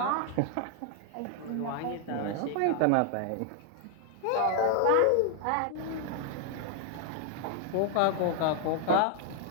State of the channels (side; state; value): both; different; correlation 0.00